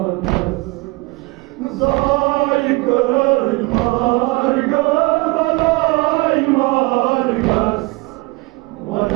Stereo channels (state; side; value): quieter; left; 24.5 dB